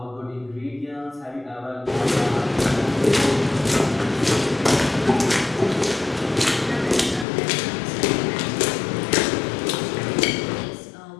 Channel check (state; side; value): drops out; right; at 7.2 s